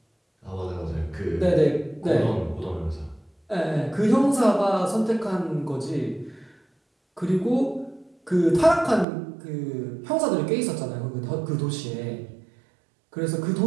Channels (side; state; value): left; drops out; at 9.1 s